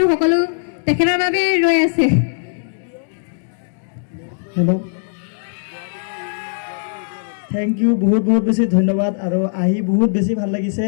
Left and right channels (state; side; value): silent; right; 66 dB below the other